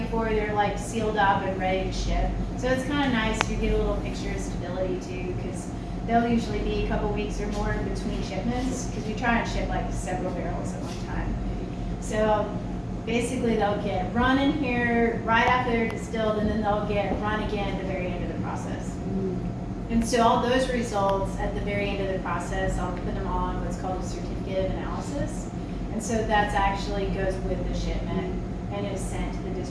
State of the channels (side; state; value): both; identical; correlation 1.00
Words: before they're like sealed up and ready to ship. So it's kind of nice. You get a little picture of stability too, because they'll usually be a couple weeks or more in between shipments, because we try and ship like several barrels at one time. So basically they'll get run in here right after they're distilled, and then they'll get run again at the very end of the process. And so all those results at the very end of the process, I'll put them on what's called a certificate of analysis. And so that's actually goes with the shipment and is sent to the